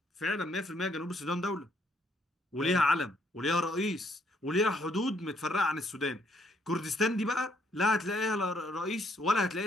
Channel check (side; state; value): both; normal; correlation 0.70